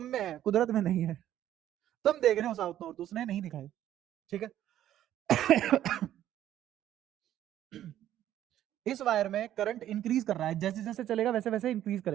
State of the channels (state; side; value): quieter; left; 12.0 dB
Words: में है, कुदरत में नहीं है। तुम देख रहे हो साउथ नॉर्थ, उसने नहीं दिखाई, ठीक है। इस वायर में करंट इंक्रीज कर रहा है, जैसे जैसे चलेगा वैसे वैसे इंक्रीज